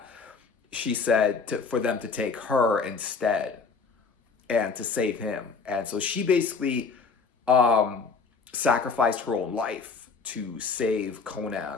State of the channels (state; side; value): quieter; right; 4.9 dB